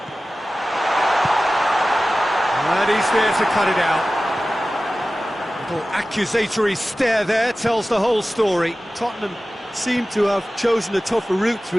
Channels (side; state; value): both; normal; correlation 0.96